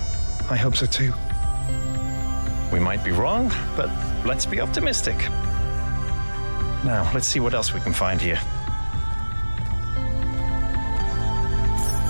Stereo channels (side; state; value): both; inverted; correlation -1.00